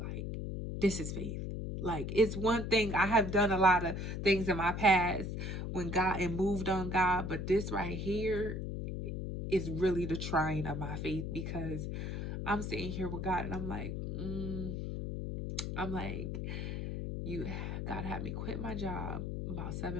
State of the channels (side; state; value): left; noise; hum, 4 dB below the sound